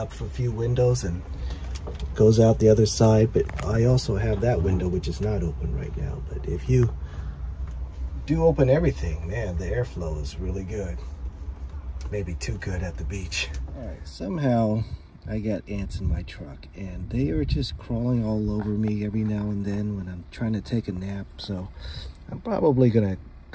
a few windows and it goes out the other side. But I also have that window which is not open right now. But if you do open everything, man, the airflow is really good. Maybe too good at the beach. All right, somehow I got ants in my truck, and they are just crawling all over me every now and then when I'm trying to take a nap. So I'm probably gonna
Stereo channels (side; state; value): both; identical; correlation 1.00